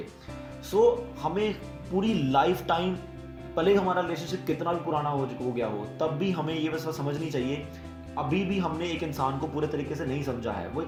सो हमें पूरी लाइफ टाइम, भले हमारा रिलेशनशिप कितना भी पुराना हो गया हो, तब भी हमें ये बस समझनी चाहिए अभी भी हमने एक इंसान को पूरे तरीके से नहीं समझा है। वो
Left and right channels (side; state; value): both; identical; correlation 1.00